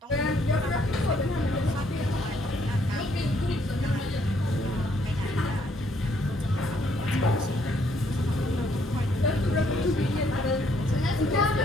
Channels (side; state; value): both; normal; correlation 0.68